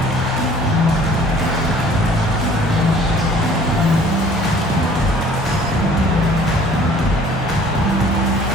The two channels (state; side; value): normal; both; correlation 0.52